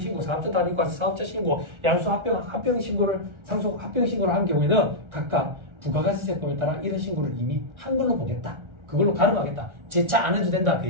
사업자 단위과세, 사업자 신고, 양수 합병신고를 상속 합병신고를 한 경우에는 각각 부가가치세법에 따라 이런 신고를 이미 한 걸로 보겠다. 그걸로 가름하겠다. 재차 안 해도 된다. 그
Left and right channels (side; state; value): left; late; 1.4 ms